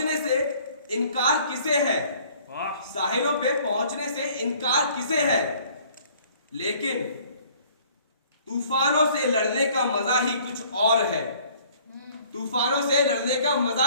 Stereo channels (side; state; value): both; inverted; correlation -0.56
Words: से इनकार किसे है साहिलों पे पहुंचने से इनकार किसे है लेकिन तूफानों से लड़ने का मजा ही कुछ और है तूफानों से लड़ने का मजा